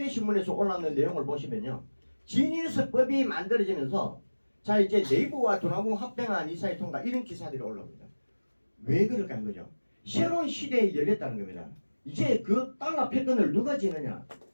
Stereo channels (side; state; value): both; inverted; correlation -1.00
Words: 신문에서 올라오는 내용을 보시면요. 지니어스법이 만들어지면서 자, 이제 네이버와 두나무 합병한 이사회 통과 이런 기사들이 올라옵니다. 왜 그럴까 하는 거죠? 새로운 시대에 열렸다는 겁니다. 이제 그 달러 패권을 누가 지느냐?